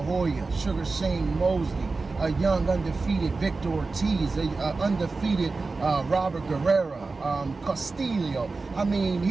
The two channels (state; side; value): quieter; left; 3.8 dB